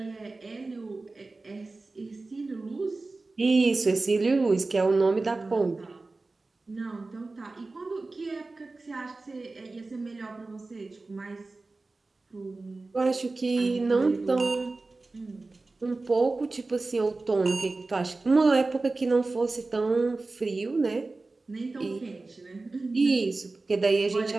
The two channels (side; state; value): left; quieter; 3.4 dB